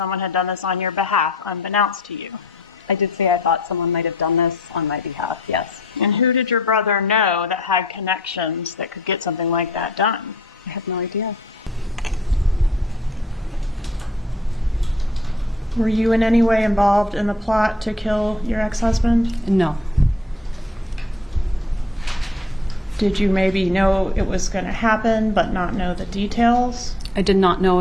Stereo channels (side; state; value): both; normal; correlation 0.61